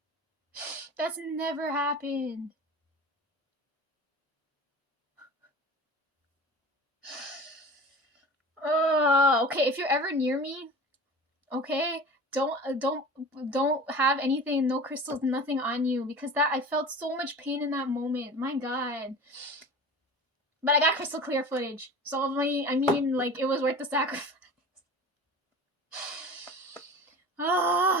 That's never happened. okay, if you're ever near me, okay, don't have anything, no crystals, nothing on you, because that I felt so much pain in that moment. My God. But I got crystal clear footage, so I mean, like, it was worth the sacrifice.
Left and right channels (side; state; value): both; normal; correlation 0.37